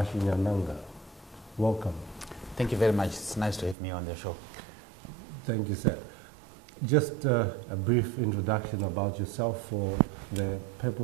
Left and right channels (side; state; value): left; drops out; at 3.8 s